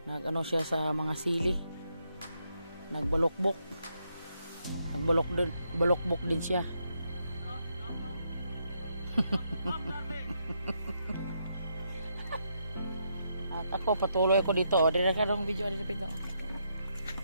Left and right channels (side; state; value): both; inverted; correlation -0.78